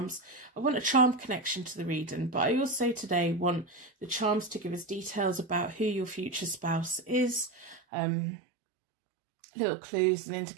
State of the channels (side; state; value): left; drops out; at 7.8 s